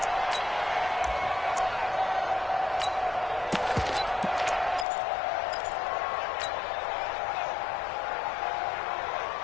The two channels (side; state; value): right; drops out; at 4.9 s